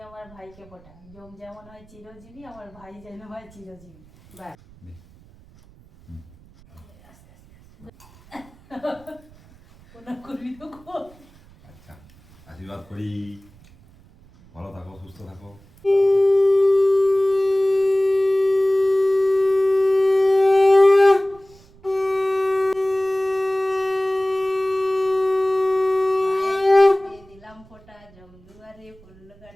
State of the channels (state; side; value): noise; right; rumble, 26 dB below the sound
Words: আমার ভাইকে ফোঁটা। জম যেমন হয় চিরজীবী, আমার ভাই যেন হয় চিরজীবী। ব্যাস। ওনা করবি তো কর। আচ্ছা, আশীর্বাদ করি, ভালো থাকো, সুস্থ থাকো। দিলাম ফোঁটা, জম দুয়ারে পড়লো